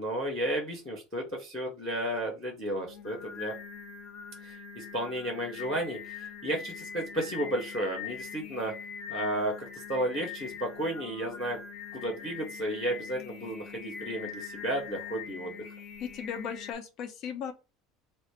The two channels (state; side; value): normal; both; correlation 0.31